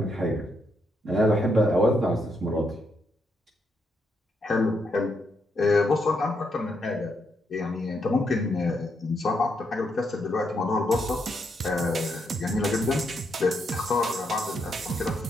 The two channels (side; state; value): both; normal; correlation 0.79